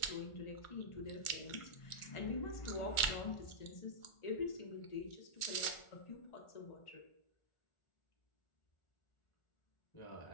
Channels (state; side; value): late; right; 1.4 ms